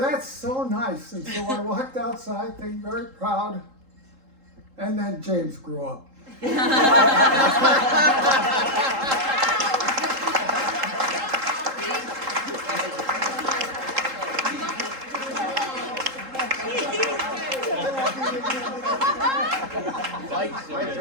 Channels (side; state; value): left; late; 3.8 ms